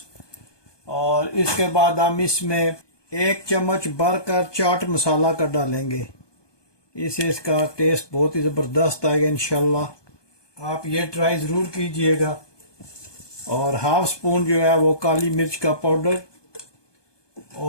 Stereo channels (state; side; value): late; right; 1.2 ms